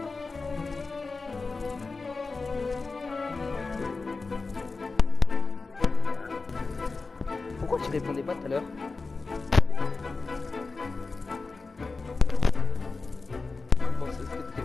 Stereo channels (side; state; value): right; quieter; 4.0 dB